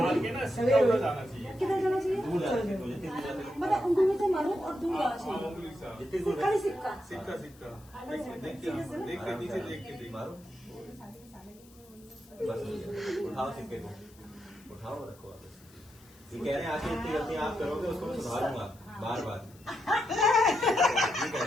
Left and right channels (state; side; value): noise; left; hiss, 26 dB below the sound